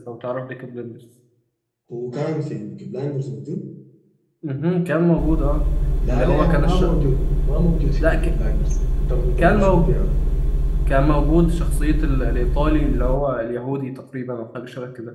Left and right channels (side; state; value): both; identical; correlation 1.00